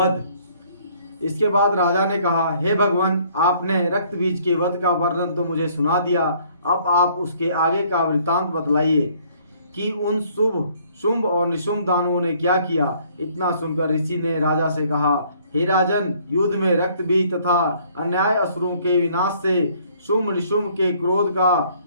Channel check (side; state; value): both; inverted; correlation -0.61